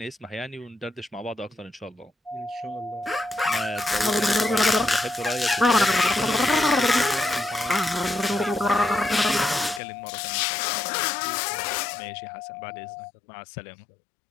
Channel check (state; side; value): drops out; right; at 9.8 s